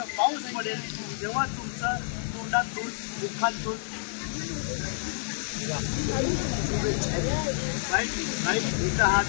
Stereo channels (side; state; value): right; silent; digital silence